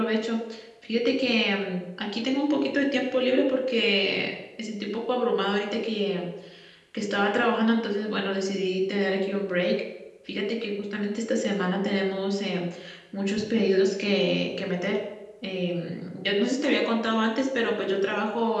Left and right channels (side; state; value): both; identical; correlation 1.00